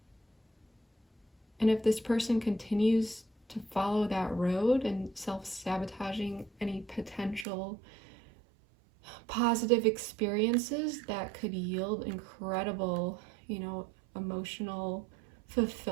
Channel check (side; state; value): left; drops out; at 7.5 s